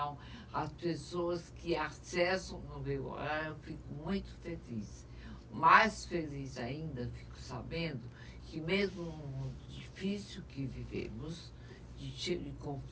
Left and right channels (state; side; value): identical; both; correlation 1.00